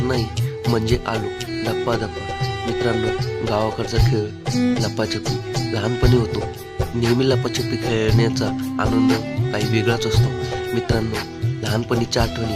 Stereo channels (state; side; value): identical; both; correlation 1.00